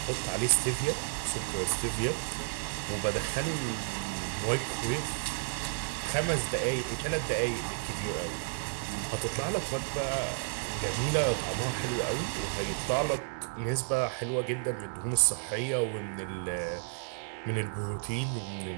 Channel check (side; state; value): left; silent; 56 dB below the other